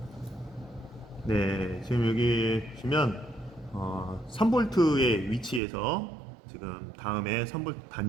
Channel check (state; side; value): drops out; left; at 5.6 s